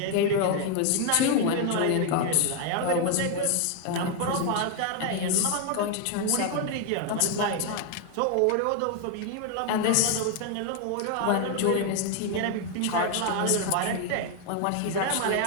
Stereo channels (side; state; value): both; different; correlation 0.01